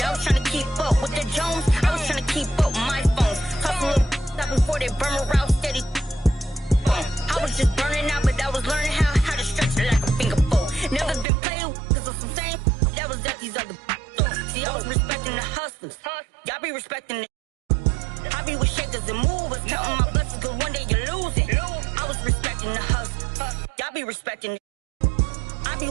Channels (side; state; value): left; drops out; at 11.2 s